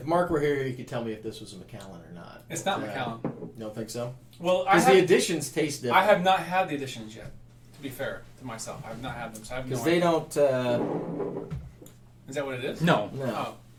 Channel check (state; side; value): identical; both; correlation 1.00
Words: Mark were here, he could tell me if this was a Macallan or not. It's not Macallan. You don't think so? Well, Because the editions taste different. I have not had the editions yet, to be fair to myself. I have not had them, so I have no Because they idea. don't. Is that what it is? No. No. Oh.